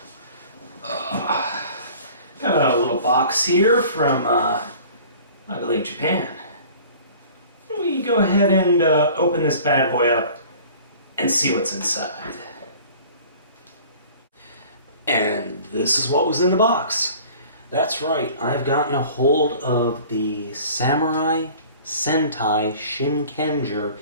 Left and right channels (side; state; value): both; inverted; correlation -0.47